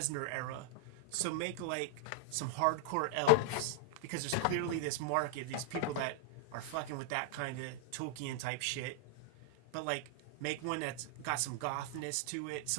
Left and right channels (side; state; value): both; different; correlation -0.01